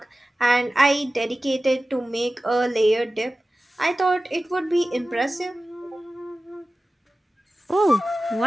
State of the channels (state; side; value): normal; both; correlation 0.95